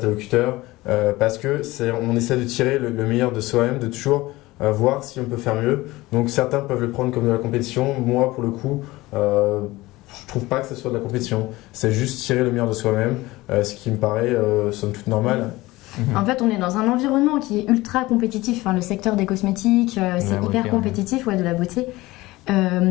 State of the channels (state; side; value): quieter; right; 19.4 dB